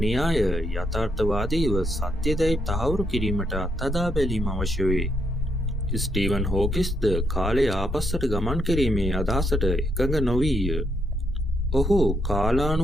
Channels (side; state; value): both; normal; correlation 0.77